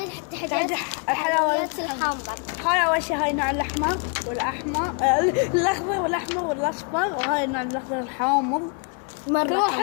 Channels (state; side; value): quieter; right; 38.4 dB